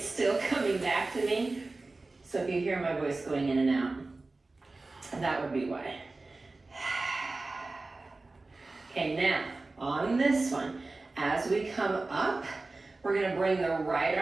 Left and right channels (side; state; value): left; quieter; 3.3 dB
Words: still coming back to me. So if you hear my voice going in and out, that would be why. Okay, now on this one, as we come up, we're gonna bring the right